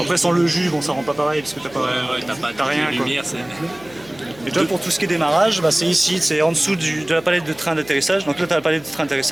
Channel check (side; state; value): left; noise; hum, 23 dB below the sound